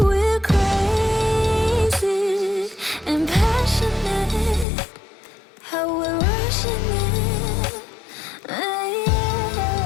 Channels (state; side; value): drops out; right; at 4.7 s